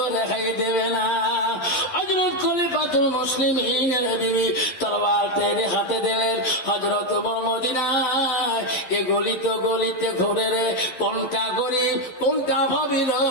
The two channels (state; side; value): late; right; 11 ms